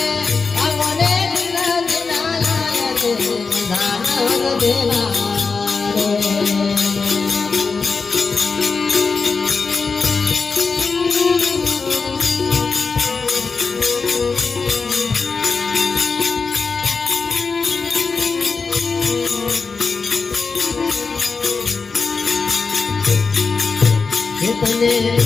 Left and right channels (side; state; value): right; quieter; 4.7 dB